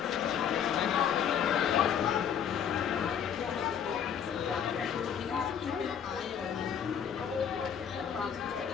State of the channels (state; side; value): quieter; right; 8.2 dB